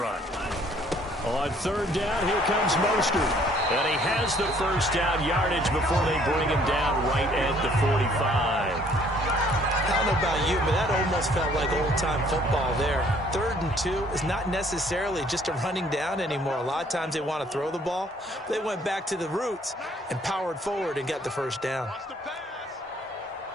On 3rd down, here comes Mostert. And he has the first down yardage before they bring him down right at the 45. I don't know about you, but that almost felt like old-time football there. 3rd and 2 is not necessarily just a running down anymore. A lot of times they want to throw the ball. They went back to the roots and powered forward and got the first down.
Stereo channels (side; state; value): both; normal; correlation 0.61